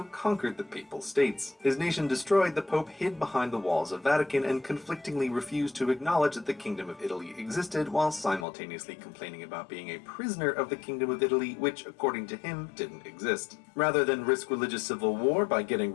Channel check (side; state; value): right; drops out; at 8.5 s